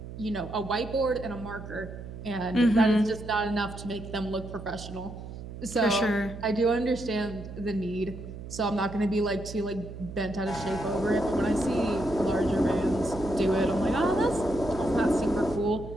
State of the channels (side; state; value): right; noise; hum, 11 dB below the sound